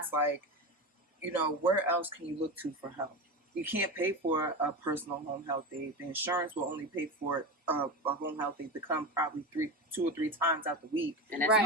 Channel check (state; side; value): normal; both; correlation 0.22